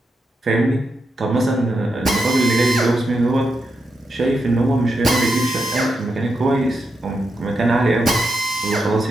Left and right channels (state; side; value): normal; both; correlation 0.85